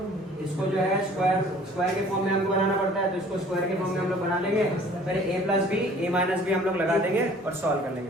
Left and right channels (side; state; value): both; normal; correlation 0.52